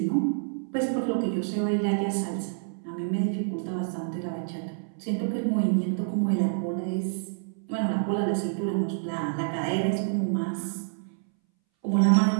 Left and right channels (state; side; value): silent; left; 60 dB below the other